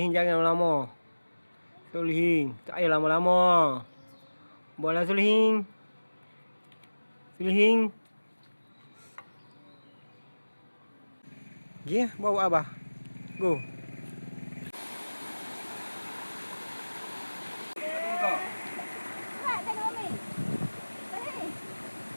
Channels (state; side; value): inverted; both; correlation -1.00